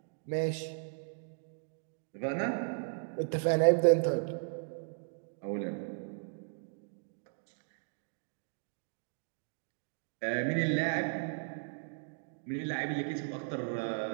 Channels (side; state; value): left; silent; digital silence